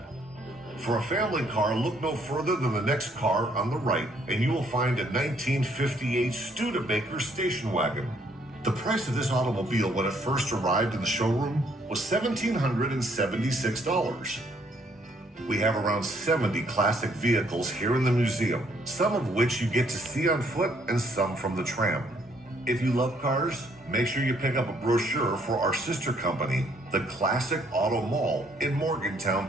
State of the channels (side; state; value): both; normal; correlation 0.67